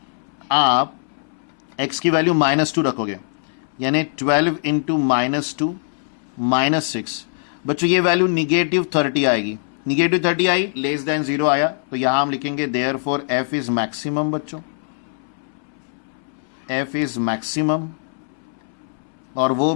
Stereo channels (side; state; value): right; silent; 64 dB below the other